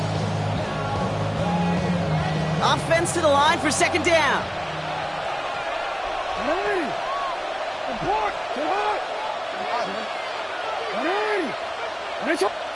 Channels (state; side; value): identical; both; correlation 1.00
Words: Offense to the line for second down.